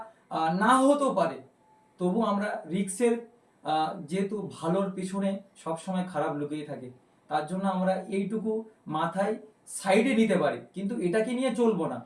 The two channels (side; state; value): both; identical; correlation 1.00